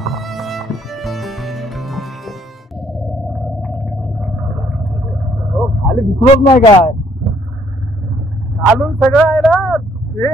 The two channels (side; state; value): both; normal; correlation 0.65